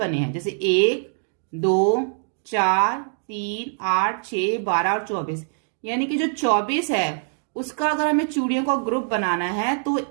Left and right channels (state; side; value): silent; left; digital silence